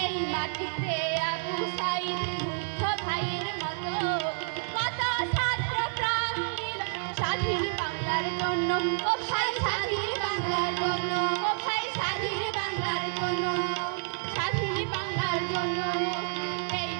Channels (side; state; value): left; silent; 58 dB below the other